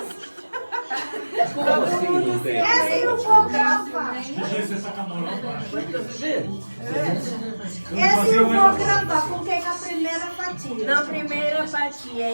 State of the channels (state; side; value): inverted; both; correlation -1.00